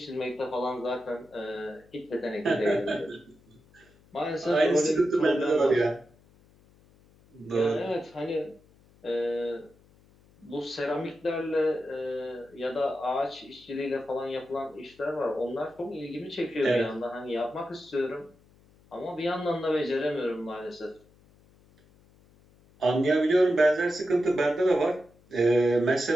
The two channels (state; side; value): noise; left; hum, 29 dB below the sound